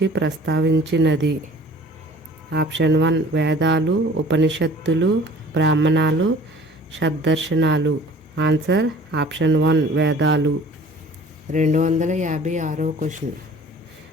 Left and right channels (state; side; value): normal; both; correlation 0.48